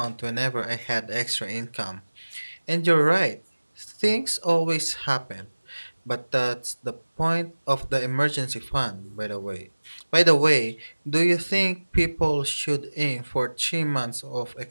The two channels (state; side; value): inverted; both; correlation -1.00